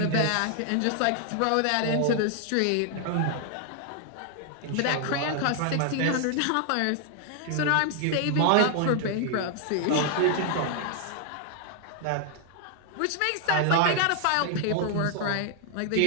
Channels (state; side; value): different; both; correlation 0.00